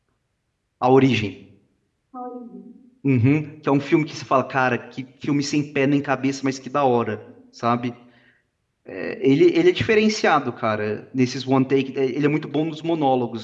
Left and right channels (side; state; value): both; identical; correlation 1.00